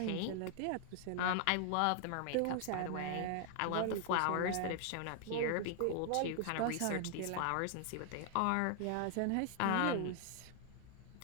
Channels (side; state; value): both; different; correlation 0.00